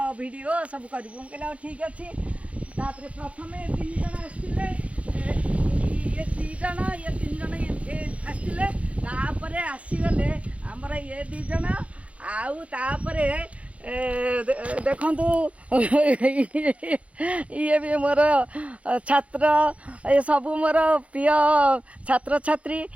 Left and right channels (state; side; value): late; left; 0.064 ms